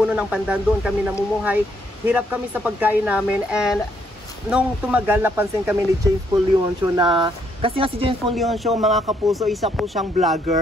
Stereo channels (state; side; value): normal; both; correlation 0.72